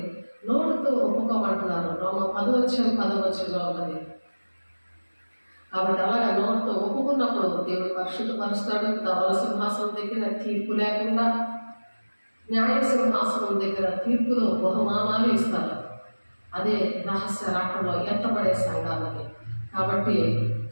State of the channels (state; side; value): inverted; both; correlation -1.00